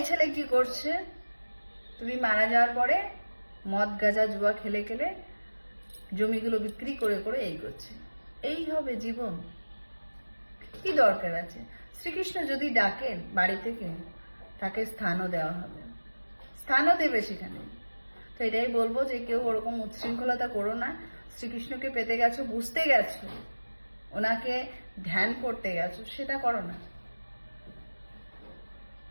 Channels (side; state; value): both; inverted; correlation -1.00